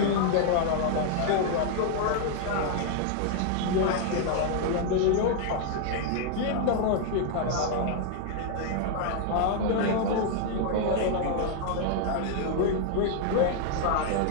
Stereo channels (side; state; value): both; different; correlation 0.00